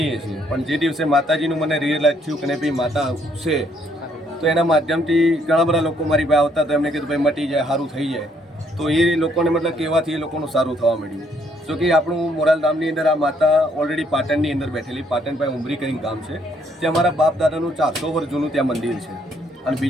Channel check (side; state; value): both; normal; correlation 0.69